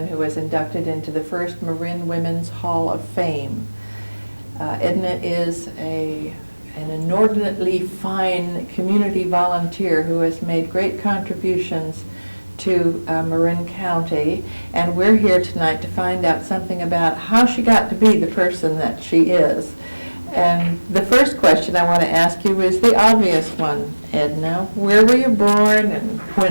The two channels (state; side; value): inverted; both; correlation -1.00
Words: who was inducted into the first Marin Women's Hall of Fame. Edna is an inordinately fine community volunteer who has made great contributions to Marin County, and we're here tonight to find out something about how she got to be the person that she is. And the first question I want to ask you is the obvious one, Edna. Where were you born and